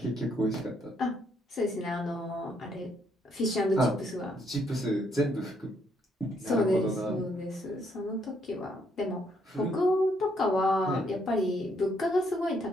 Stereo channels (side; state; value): both; normal; correlation 0.72